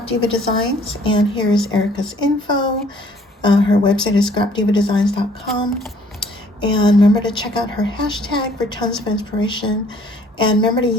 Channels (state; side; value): normal; both; correlation 0.59